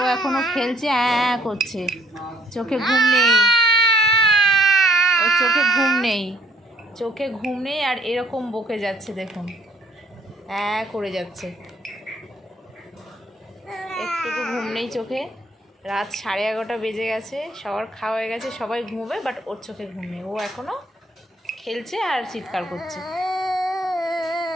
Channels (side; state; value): both; normal; correlation 0.64